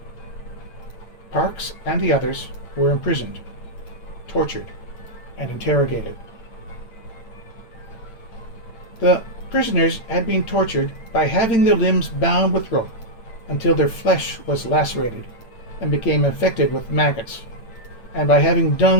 Parkes and the others were imprisoned, tortured, and interrogated. The prisoners had been tortured by having their limbs bound with rope until their flesh was lacerated and became infected with maggots, and by having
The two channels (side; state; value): right; late; 8.9 ms